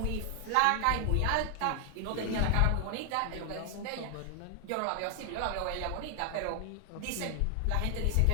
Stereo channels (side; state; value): both; different; correlation 0.00